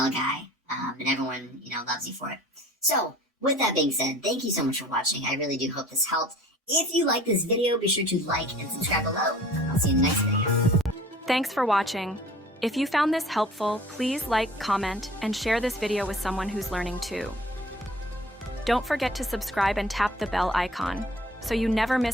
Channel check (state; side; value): normal; both; correlation 0.49